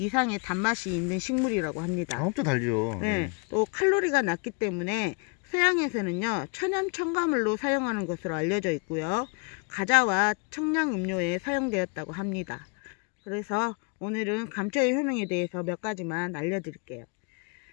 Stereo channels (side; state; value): right; quieter; 34.3 dB